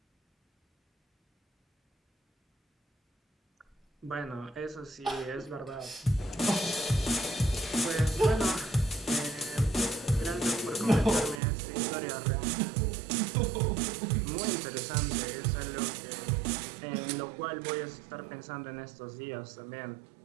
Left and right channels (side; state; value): left; drops out; at 11.4 s